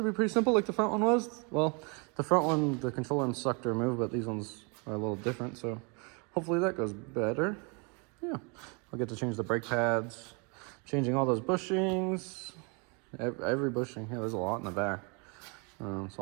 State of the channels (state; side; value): quieter; left; 33.3 dB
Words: simple like the front one was. Well, the front one, the control arms suck to remove, but these ones are a little different, so hopefully that goes better. Yeah, I'll get to change the brake pads, changing all those bushings, every bushing. Yeah, there's a lot in the back. So